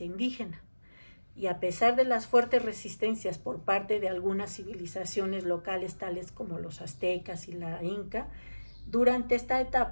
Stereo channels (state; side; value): inverted; both; correlation -1.00